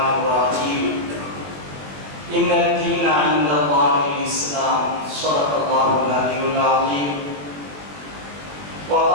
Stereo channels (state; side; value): late; left; 21 ms